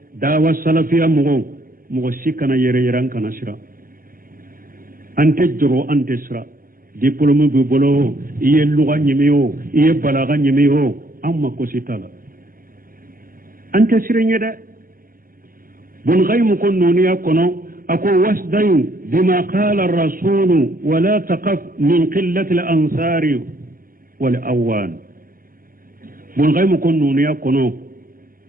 dawa salafiya mugo sikana yere yeran kana sira ante joro ante sira diplôme bu bolo iye lugha nyimiyo iye balaga nyimiyo amma ko sitala ante sirenya da bun ghaymu kun nuniya kono ako wasdayu bima qala ar-rasul wa la taqaf min qillati al-ansar wal awan bun ghaymu kun nuniya kono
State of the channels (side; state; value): left; late; 0.41 ms